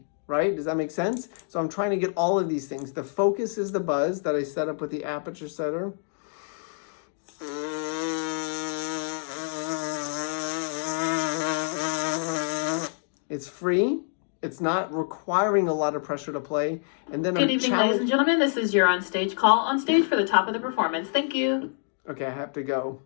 right? Does that make sense? So I'm trying to get all of these things. The focus is the buzz that I set up with the aperture setter. It's free. It's not requiring a lot of pressure to play. And then Good evening, ladies and gentlemen. This is your on-stage call. On stage for the top of the performance. Thank you. Okay, I have to go.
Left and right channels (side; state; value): right; silent; digital silence